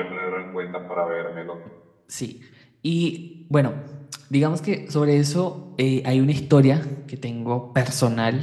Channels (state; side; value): identical; both; correlation 1.00